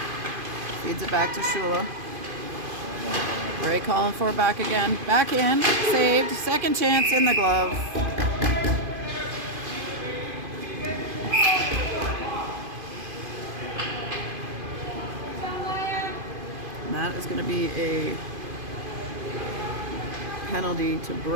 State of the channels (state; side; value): late; left; 2.5 ms